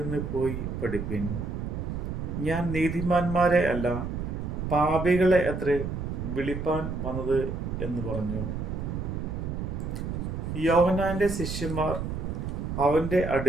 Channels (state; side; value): noise; right; rumble, 4 dB below the sound